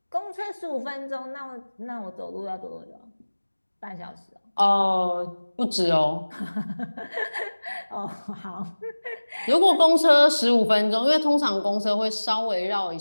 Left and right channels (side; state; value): both; inverted; correlation -1.00